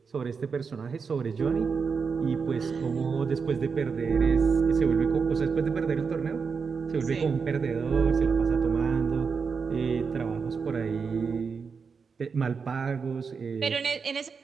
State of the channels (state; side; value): quieter; left; 5.5 dB